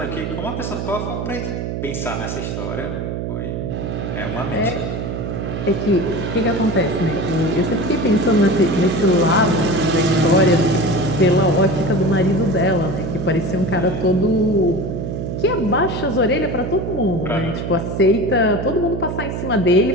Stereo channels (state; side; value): noise; right; hum, 4 dB below the sound